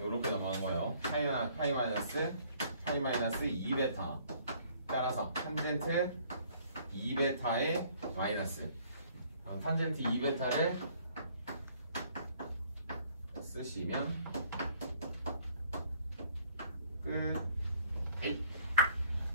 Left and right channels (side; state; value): both; inverted; correlation -0.60